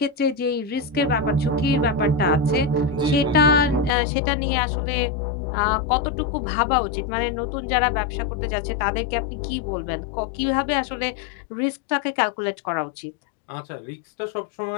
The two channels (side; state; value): right; drops out; at 3.9 s